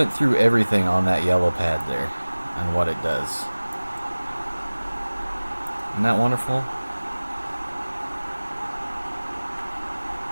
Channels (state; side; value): inverted; both; correlation -1.00